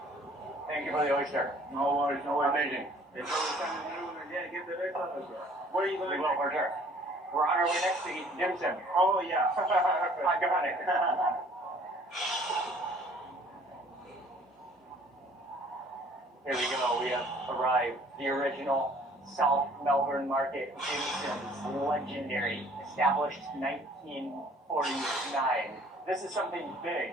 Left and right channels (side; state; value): both; normal; correlation 0.55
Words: Thank you for the oyster. No worries, no worries. Amazing. It's always time to do it. Yeah, get the best of it. Where are you We going? will, for sure. We're on our way next to eat dim sum. Oh, yeah. I got it. Here we go. We have arrived. The original South Melbourne Market, dim sums, legendary, established 1949. This is something big,